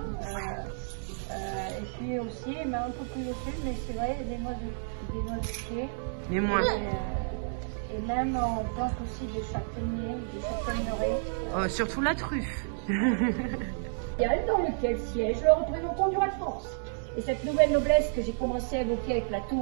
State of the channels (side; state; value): left; silent; digital silence